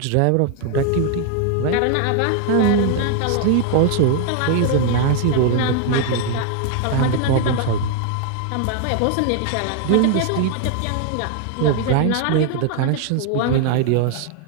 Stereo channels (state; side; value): different; both; correlation 0.00